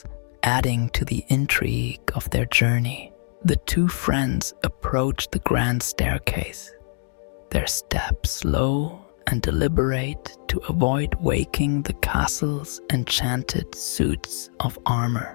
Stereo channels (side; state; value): right; silent; digital silence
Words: adding to the intrigue of their journey. The two friends approached the grand staircase, their steps low and deliberate to avoid waking the castle's enchanted suits of